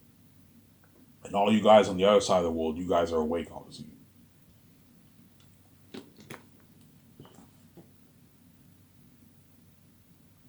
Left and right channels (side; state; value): both; identical; correlation 1.00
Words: and all you guys on the other side of the world, you guys are awake, obviously.